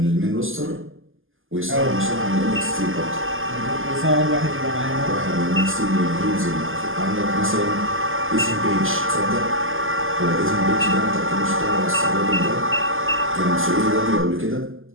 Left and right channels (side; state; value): left; late; 0.59 ms